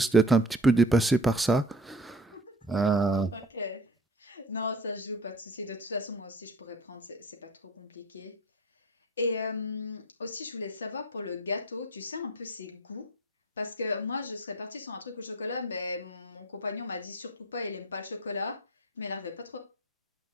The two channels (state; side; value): normal; both; correlation 0.43